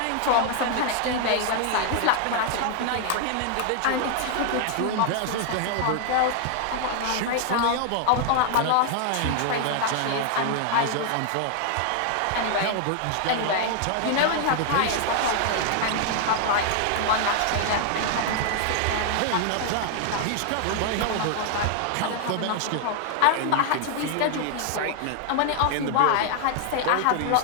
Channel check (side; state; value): both; different; correlation 0.00